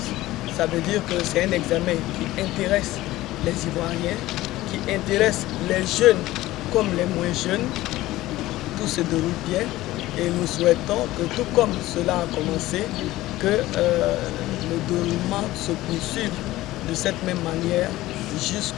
ça veut dire que c'est un examen qui intéresse les Ivoiriens, qui intéresse les jeunes comme les moins jeunes. Tout se déroule bien et nous souhaitons que tout comme cela a commencé, que le déroulement se poursuive de cette même manière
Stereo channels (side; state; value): right; quieter; 16.8 dB